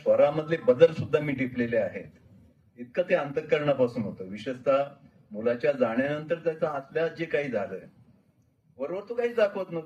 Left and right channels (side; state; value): both; identical; correlation 1.00